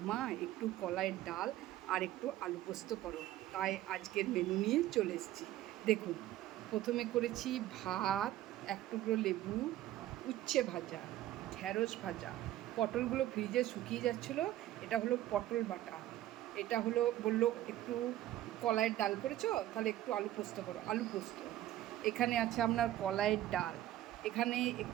মা একটু কলাইয়ের ডাল আর একটু আলু পোস্ত করো। তাই আজকের মেনু নিয়ে চলে এসেছি। দেখুন, প্রথমে করেছি ভাত, এক টুকরো লেবু, উচ্ছে ভাজা, ঢ্যাঁড়স ভাজা, পটলগুলো ফ্রিজে শুকিয়ে যাচ্ছিলো। এটা হলো পটল বাটা। এটা হলো বললো একটু কলাইয়ের ডাল করেছো, তাহলে একটু আলু পোস্ত করো, আলু পোস্ত। এখানে আছে আপনার কলাইয়ের ডাল। এখানে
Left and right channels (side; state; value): left; quieter; 14.0 dB